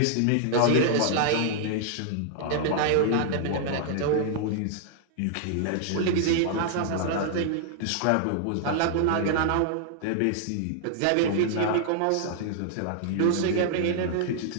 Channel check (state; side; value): different; both; correlation -0.01